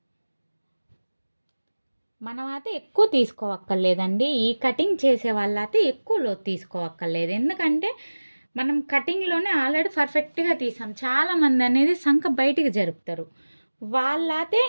మనం అయితే ఎక్కువ తీసుకోవక్కర్లేదండి. ఈ కటింగ్ చేసే వాళ్ళైతే ఎక్కువ లోతు తీసుకోవక్కర్లేదు. ఎందుకంటే మనం కటింగ్లోనే ఆల్రెడీ పర్ఫెక్ట్గా తీసాం. చాలామంది అనేది సంఖ బయటికి జరుపుతారు, వాళ్ళైతే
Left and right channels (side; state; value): both; inverted; correlation -1.00